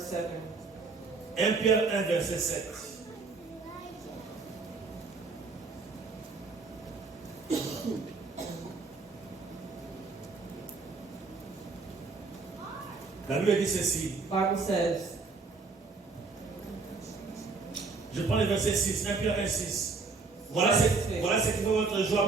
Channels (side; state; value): left; quieter; 4.2 dB